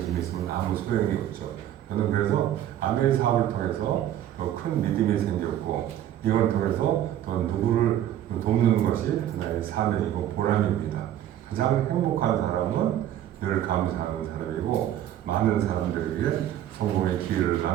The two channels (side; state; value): left; quieter; 11.6 dB